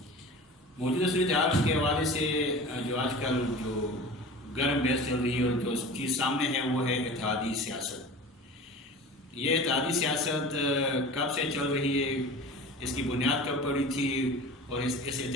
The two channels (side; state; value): both; normal; correlation 0.36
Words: موجودہ صورتحال کے حوالے سے جو آج کل جو گرم بحث چل رہی ہے اور جو چیز سامنے ہے وہ ہے اتحادی سیاست۔ یہ اتحادی سیاست کب سے چل رہی ہے، اس کی بنیاد کب پڑی تھی، اور اس